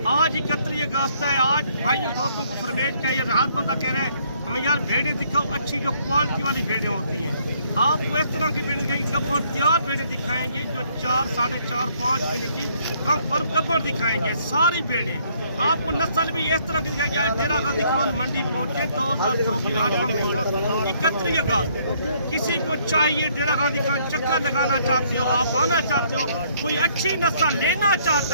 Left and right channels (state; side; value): inverted; both; correlation -0.66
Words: आज 31 अगस्त है। आज भाइयों दोस्तों को फरमेट क्या ये हर बंदा कह रहे हैं हमें यार भेड़ें दिखाओ, अच्छी जो क्वालिटी वाली भेड़ें होती हैं। आपको इस तरह की भेड़ें दिखाएंगे, गब्बर तैयार भेड़ें दिखाएंगे जो 4, 4.5, 5 महीने की कम पर गब्बर दिखाएंगे। सारी भेड़ें आपको नस्ल भी इस तरह की दिखाएंगे। डेरा गाजी खान मंडी पहुंचे 2024 31 अगस्त। किसी को चाहिए डेरा गाजी खान चक्कर लगाना चाहते हो, आप आना चाहते हो, कोई अच्छी नस्ल लेना